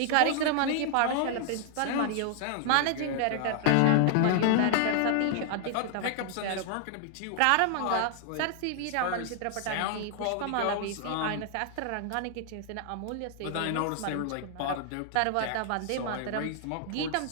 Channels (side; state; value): both; different; correlation 0.00